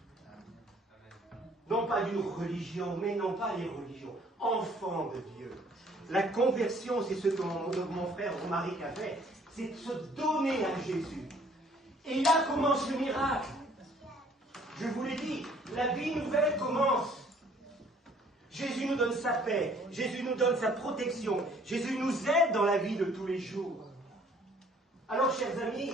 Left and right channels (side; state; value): both; normal; correlation 0.58